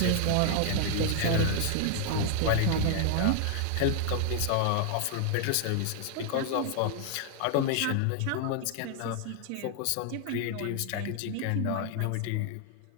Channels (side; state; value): both; different; correlation 0.00